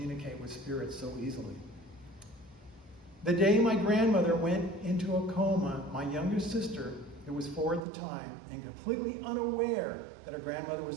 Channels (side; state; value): left; drops out; at 7.8 s